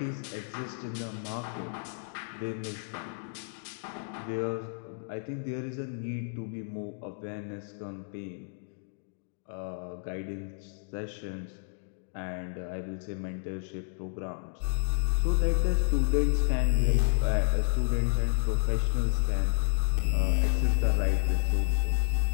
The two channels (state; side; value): silent; right; digital silence